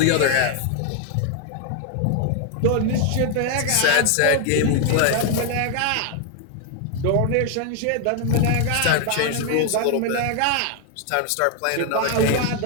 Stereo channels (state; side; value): different; both; correlation 0.00